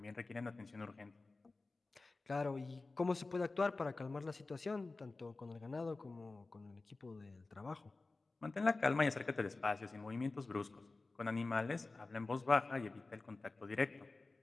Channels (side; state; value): right; quieter; 3.5 dB